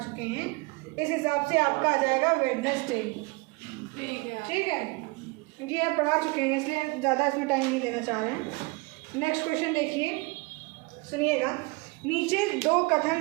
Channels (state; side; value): quieter; left; 26.9 dB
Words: हैं, इस हिसाब से आपका आ जाएगा वेडनेसडे। ठीक है, ये आप पढ़ा चुके हैं इसलिए ज़्यादा इसमें टाइम नहीं देना चाह रहे हैं। नेक्स्ट क्वेश्चन देखिए, सुनिएगा। नीचे 2